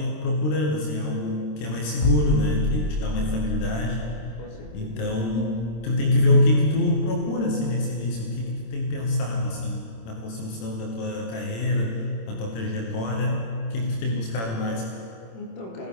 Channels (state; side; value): late; right; 26 ms